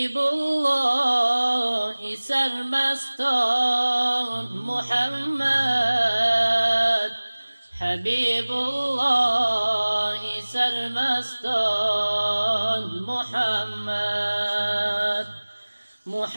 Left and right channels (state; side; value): inverted; both; correlation -1.00